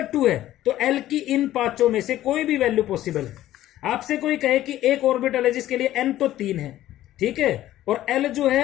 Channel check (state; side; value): quieter; right; 13.9 dB